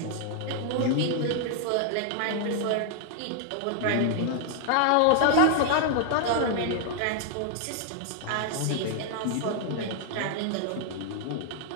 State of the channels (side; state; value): both; different; correlation 0.00